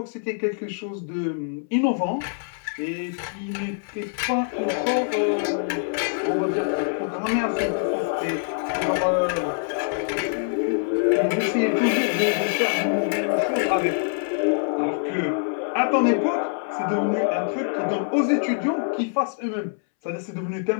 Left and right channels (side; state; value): right; silent; 62 dB below the other